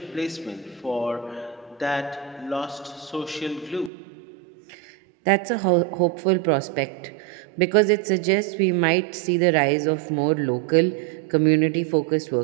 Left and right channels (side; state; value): left; drops out; at 3.9 s